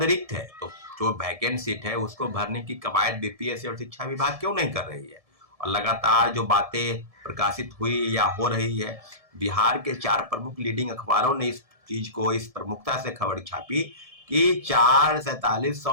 रिक्त है। तो जो वैकेंट सीट है उसको भरने की कवायद बीपीएससी और शिक्षा विभाग क्यों नहीं कर रही है? और लगातार जो बातें प्रकाशित हुई या हो रही है, बिहार के 4 प्रमुख लीडिंग अखबारों ने इस चीज को इस प्रमुखता से खबर छापी कि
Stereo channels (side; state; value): left; late; 1.7 ms